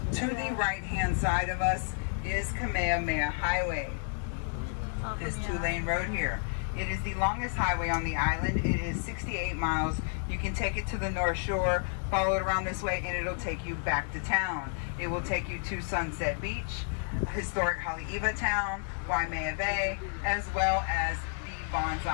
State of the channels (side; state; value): right; silent; 57 dB below the other